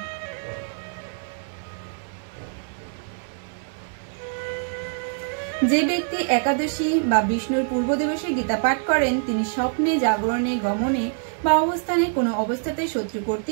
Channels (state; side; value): silent; left; digital silence